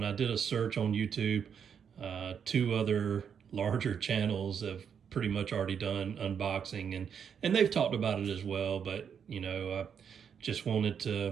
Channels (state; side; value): quieter; left; 7.5 dB